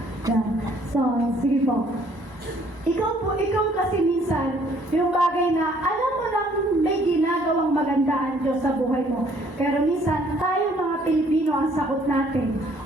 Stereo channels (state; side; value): late; left; 1.0 ms